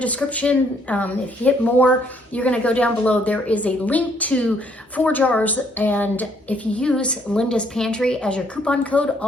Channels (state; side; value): normal; both; correlation 0.67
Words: if you hit more, you're going to go down below. There is a link to 4 jars. And if you use Linda's Pantry as your coupon code,